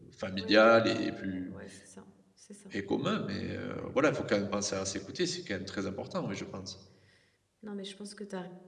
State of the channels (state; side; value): identical; both; correlation 1.00